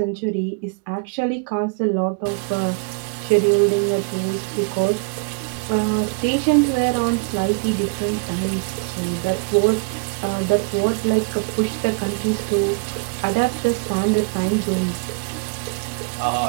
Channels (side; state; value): left; quieter; 34.9 dB